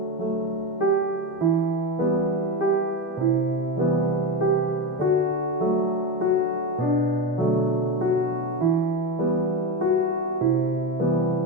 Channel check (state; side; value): normal; both; correlation 0.17